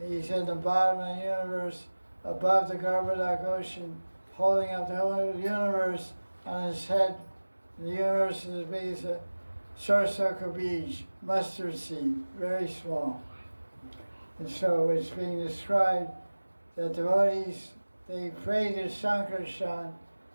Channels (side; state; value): both; inverted; correlation -1.00